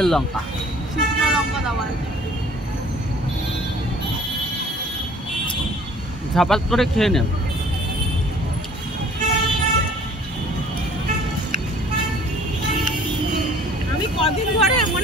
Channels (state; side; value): normal; both; correlation 0.52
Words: লঙ্কা? শুকনো লঙ্কা দেওয়া। ঝাপাত করে খেয়ে নেন। আমি কদিন ধরে